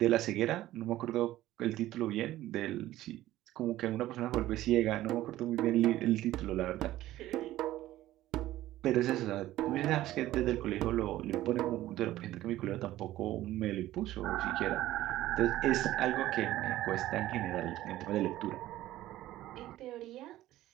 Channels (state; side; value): quieter; left; 15.0 dB